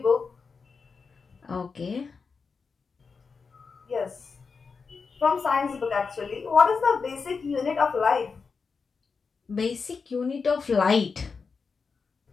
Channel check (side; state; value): right; quieter; 5.1 dB